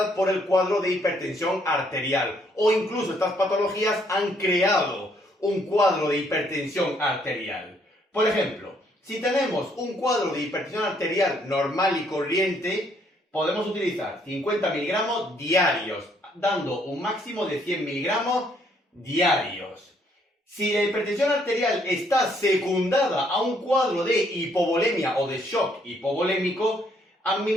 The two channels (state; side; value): normal; both; correlation 0.68